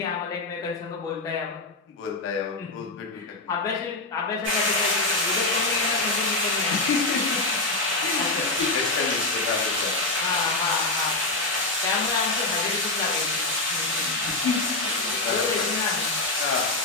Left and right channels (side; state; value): right; quieter; 3.1 dB